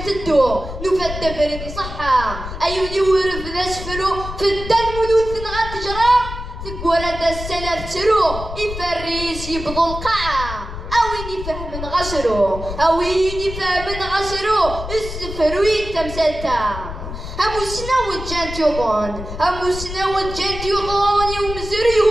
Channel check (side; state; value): left; noise; rumble, 9 dB below the sound